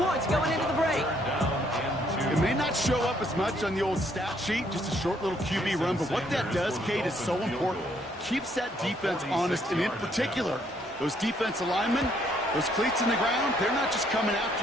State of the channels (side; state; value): both; normal; correlation 0.68